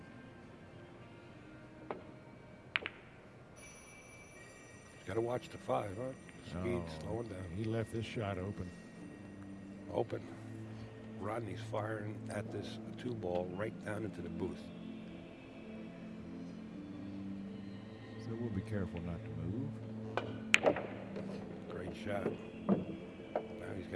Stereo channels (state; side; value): identical; both; correlation 1.00